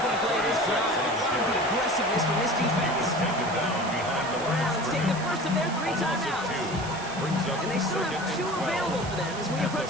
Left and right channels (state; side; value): noise; right; hiss, 13 dB below the sound